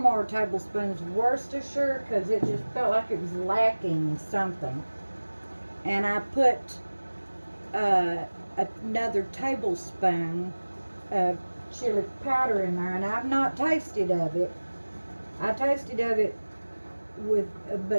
tablespoons of Worcestershire, because it just felt like it was lacking something. And I put another tablespoon of chili powder in there, and I've not tasted of it. I tasted of it with,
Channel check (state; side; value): inverted; both; correlation -1.00